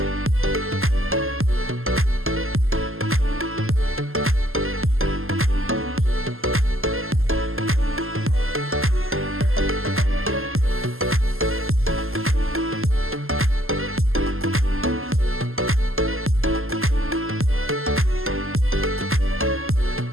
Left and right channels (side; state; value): left; late; 0.61 ms